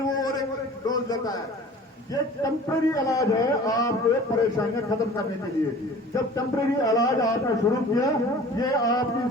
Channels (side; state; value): both; normal; correlation 0.44